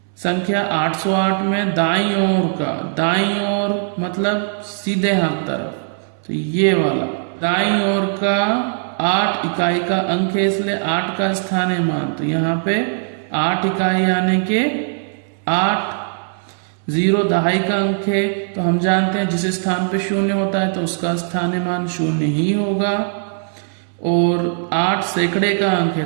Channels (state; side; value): silent; left; digital silence